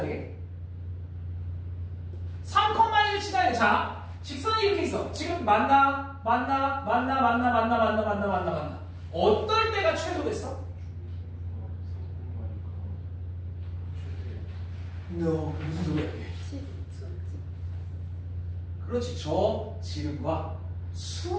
되게? 3,1을 지나야 돼. 자 직선이 이렇게 있어. 지금 만나. 어떨 때가 최소겠어? No, 무슨 소리야 이게? 그렇지. 저 지름과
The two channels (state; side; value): identical; both; correlation 1.00